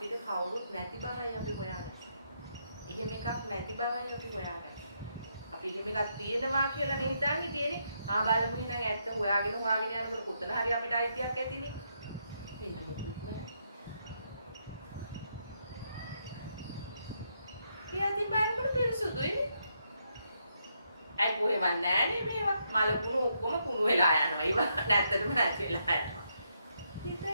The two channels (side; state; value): both; inverted; correlation -0.78